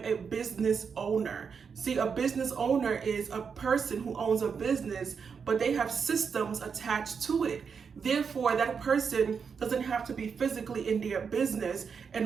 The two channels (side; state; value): left; quieter; 6.1 dB